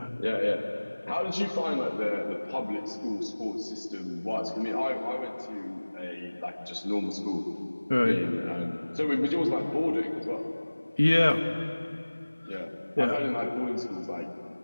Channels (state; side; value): inverted; both; correlation -1.00